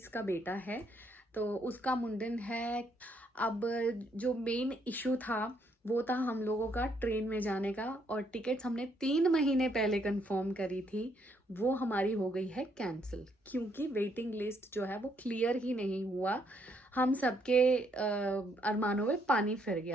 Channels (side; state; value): both; normal; correlation 0.72